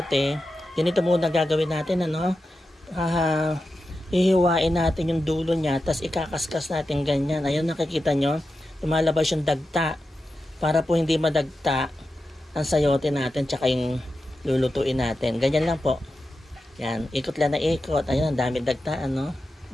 ganito muna gagawin natin, hihiwain natin yung dulo niya, tapos ikakaskas natin ganyan. Ayun, nakikita nyo, lumalabas yung dagta para po hindi madagta ang sayote natin tsaka yung lulutuin natin. Ganyan lang po. Yan, ikot lang na ikot. Ayun, ang dami dagta,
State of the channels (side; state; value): both; normal; correlation 0.91